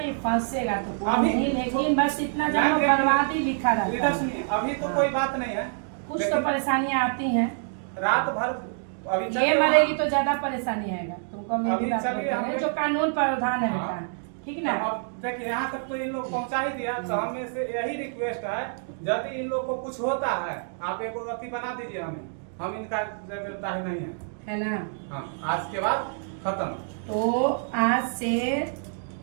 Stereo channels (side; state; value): left; silent; digital silence